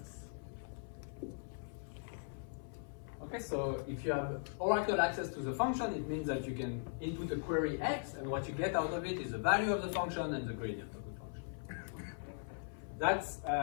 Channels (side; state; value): right; silent; 51 dB below the other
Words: Okay, so if you have oracle access to the function, it means that you can input a query x, and what you get out of it is the value of the function and the gradient of the function. That's